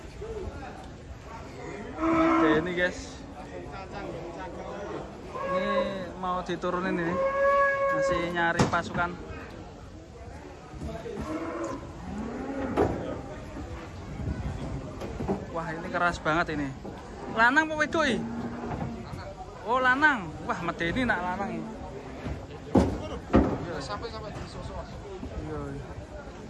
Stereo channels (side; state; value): both; identical; correlation 1.00